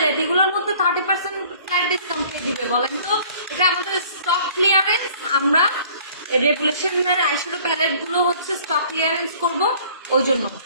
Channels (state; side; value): inverted; both; correlation -0.53